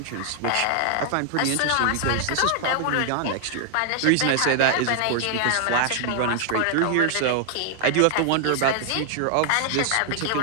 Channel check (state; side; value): different; both; correlation -0.01